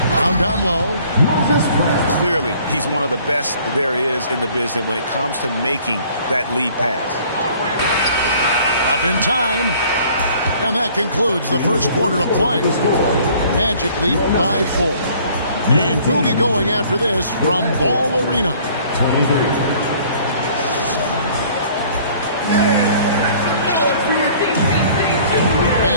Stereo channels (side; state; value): both; inverted; correlation -0.55